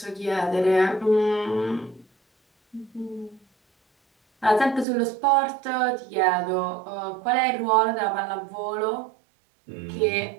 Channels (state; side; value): drops out; left; at 4.9 s